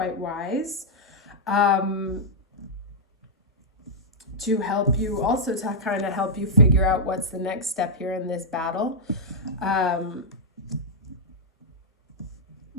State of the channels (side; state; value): both; normal; correlation -0.08